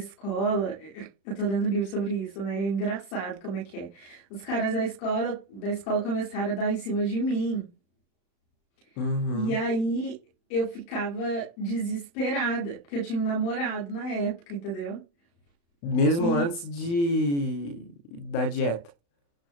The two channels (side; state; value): right; late; 35 ms